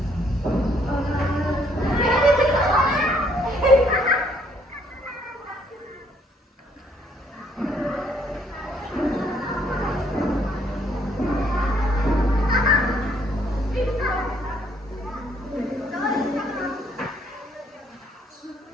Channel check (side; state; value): both; normal; correlation 0.67